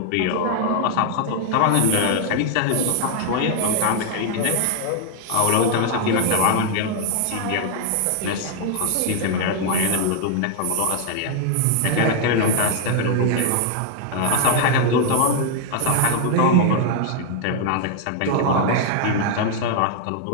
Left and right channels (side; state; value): both; different; correlation 0.00